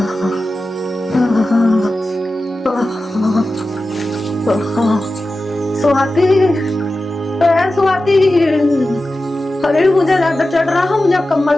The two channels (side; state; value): both; normal; correlation 0.93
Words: स्वाति, अरे मुझे ज्यादा चढ़ रहा, मुझे